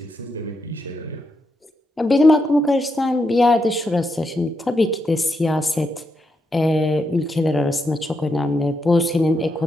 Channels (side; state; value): both; normal; correlation 0.82